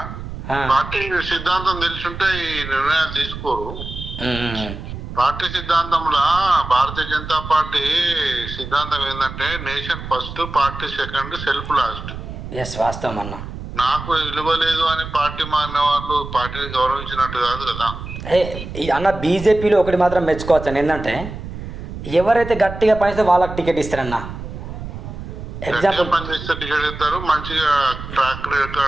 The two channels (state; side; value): noise; right; rumble, 9 dB below the sound